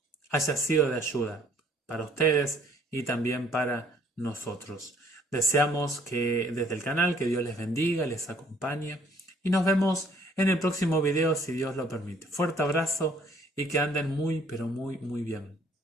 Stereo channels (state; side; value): normal; both; correlation 0.60